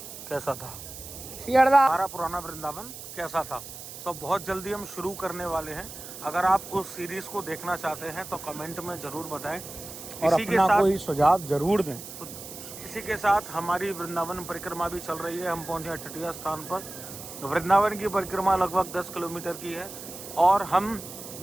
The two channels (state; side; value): noise; right; hiss, 12 dB below the sound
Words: कैसा था। हमारा पुराना वृंदावन कैसा था, तो बहुत जल्दी हम शुरू करने वाले हैं। अगर आप उस सीरीज को देखना चाहते हैं तो कमेंट में जरूर बताएं और अपना कोई सुझाव जरूर दें। इसी के साथ हमारी वृंदावन परिक्रमा भी चल रही है। हम पहुंचे हैं तटीय स्थान पर। वृंदावन की परिक्रमा लगभग 10 किलोमीटर की है और हम